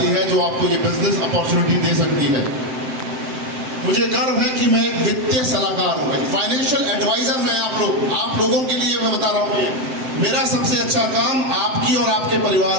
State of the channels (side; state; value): left; late; 7.7 ms